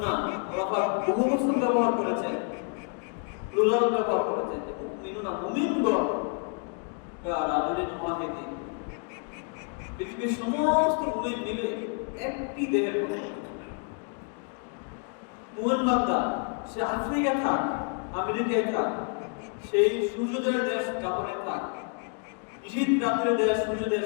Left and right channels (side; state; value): right; quieter; 39.5 dB